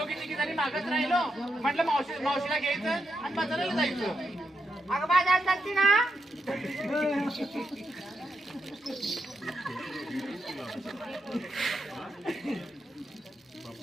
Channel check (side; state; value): both; normal; correlation 0.83